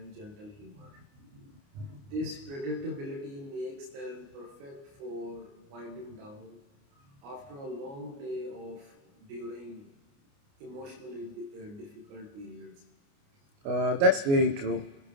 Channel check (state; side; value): late; left; 29 ms